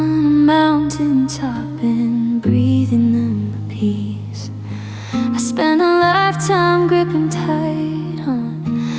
a mountain top and breathing in the peace. I spent a lifetime gripping tight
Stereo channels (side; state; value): both; identical; correlation 1.00